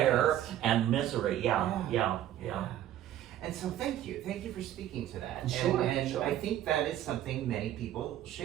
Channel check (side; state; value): left; quieter; 12.2 dB